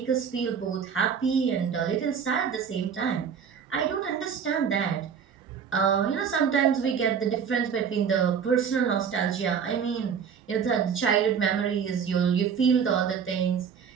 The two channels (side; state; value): left; quieter; 7.0 dB